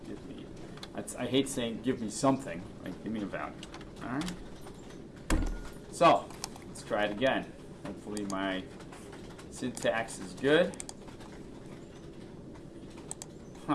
Give me. I hate saying give me something. Like give me a value. All right. So let's try it again. Hopefully my syntax is good.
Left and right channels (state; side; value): identical; both; correlation 1.00